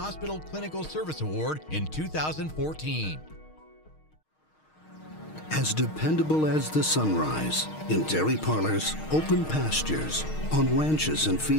Clinical Service Award in 2014. As dependable as the sunrise, in dairy parlors, open pastures, on ranches and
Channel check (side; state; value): right; late; 6.4 ms